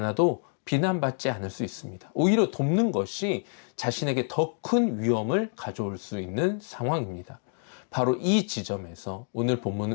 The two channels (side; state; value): right; silent; 55 dB below the other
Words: 비난받지 않을 수 있습니다. 오히려 돕는 것이 자신에게 더 큰 위험을 가져올 수 있는 상황입니다. 바로 이 지점에서 오늘